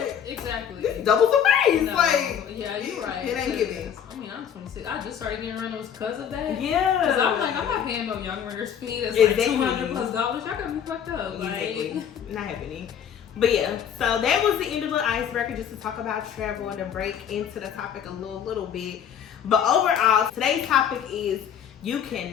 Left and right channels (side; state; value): right; quieter; 8.6 dB